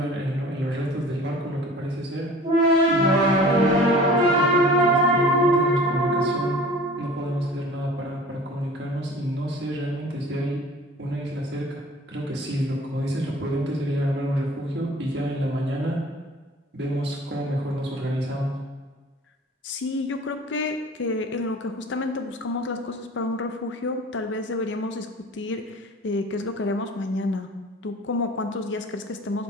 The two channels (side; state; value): both; normal; correlation 0.44